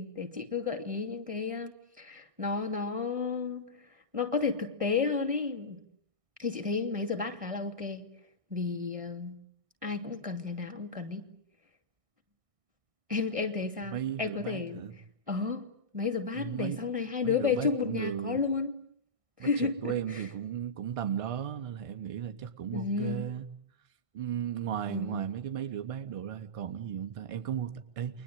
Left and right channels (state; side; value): late; left; 1.6 ms